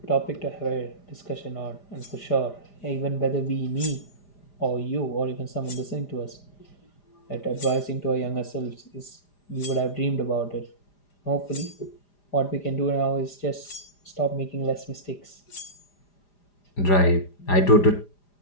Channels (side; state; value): right; late; 4.9 ms